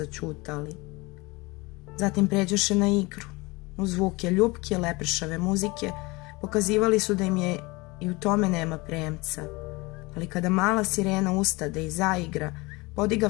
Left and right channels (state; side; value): quieter; right; 24.0 dB